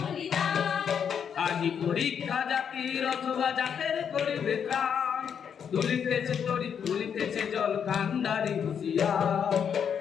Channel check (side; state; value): right; quieter; 7.7 dB